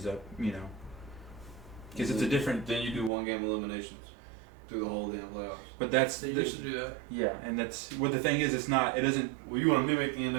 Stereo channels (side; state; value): left; drops out; at 3.1 s